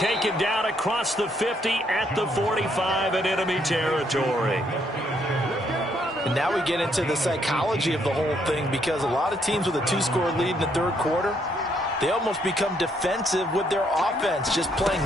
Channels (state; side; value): normal; both; correlation 0.72